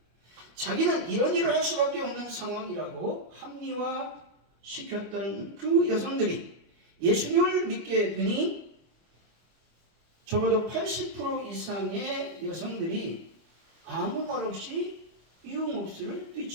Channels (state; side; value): late; left; 25 ms